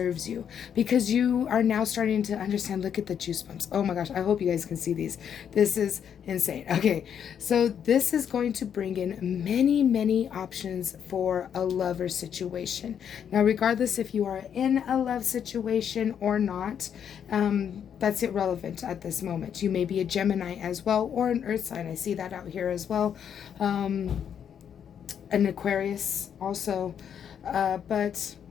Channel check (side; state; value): right; quieter; 8.4 dB